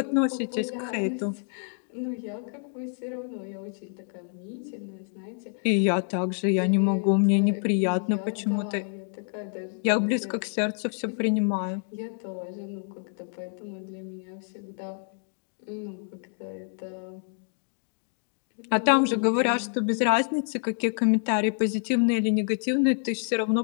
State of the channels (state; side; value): silent; right; 60 dB below the other